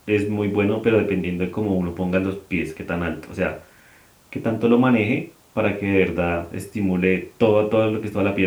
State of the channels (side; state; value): both; identical; correlation 1.00